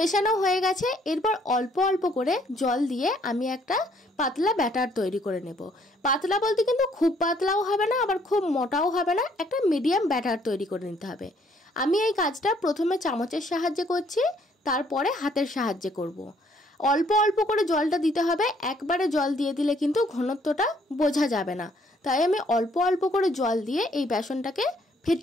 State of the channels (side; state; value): both; normal; correlation 0.65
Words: হয়ে গেছে। এরপর অল্প অল্প করে জল দিয়ে আমি একটা পাতলা ব্যাটার তৈরি করে নেব। পাতলা বলতে কিন্তু খুব পাতলাও হবে না, আবার খুব মোটাও হবে না, একটা মিডিয়াম ব্যাটার তৈরি করে নিতে হবে। আমি এই কাজটা প্রথমে চামচের সাহায্যে করছি, তারপরে হাতের সাহায্যে করব। অল্প অল্প করে জলটা দিতে হবে, একবারে জল দিয়ে দিলে কিন্তু ঘনত্বটা বোঝা যাবে না। তাই আমি অল্প অল্প করে জল দিয়ে এই বেসনটাকে